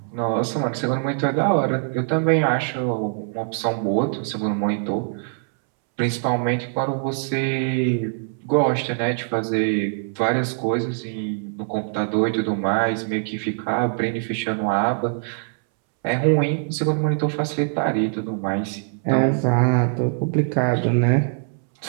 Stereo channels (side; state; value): left; silent; 64 dB below the other